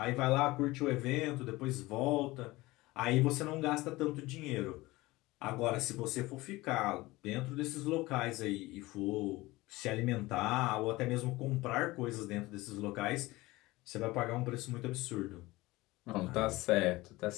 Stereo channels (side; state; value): right; quieter; 20.0 dB